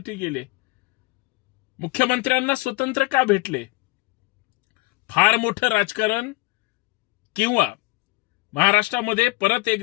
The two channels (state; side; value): quieter; right; 23.2 dB